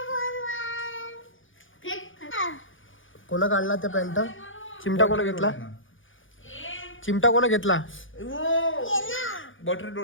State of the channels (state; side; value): late; right; 0.57 ms